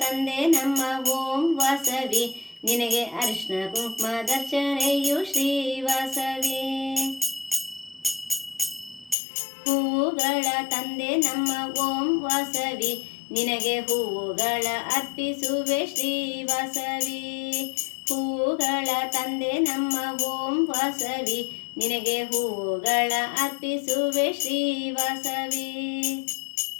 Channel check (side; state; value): right; drops out; at 9.2 s